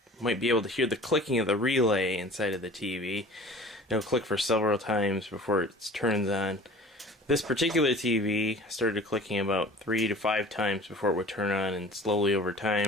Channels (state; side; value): normal; both; correlation 0.44